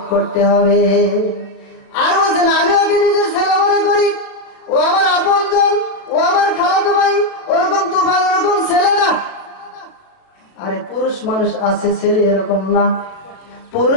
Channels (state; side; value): late; right; 36 ms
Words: করতে হবে। আর বলছেন আমি ওকে নিজের ছেলে মনে করি, ও আমার আপনজন, ও আমার খালাতো ভাই, ওরকম তুফান ওরকম ছেলে না। আরে পুরুষ মানুষ আছে, ছেলে এরকম না।